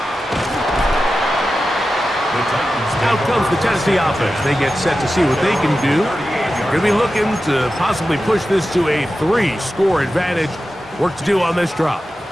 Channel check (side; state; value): both; normal; correlation 0.92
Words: Out comes the Tennessee offense. They get set to see what they can do. They're going to be looking to possibly push this to a 3-score advantage. Work to do on this drop.